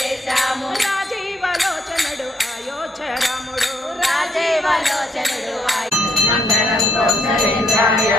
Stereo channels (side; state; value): both; normal; correlation 0.71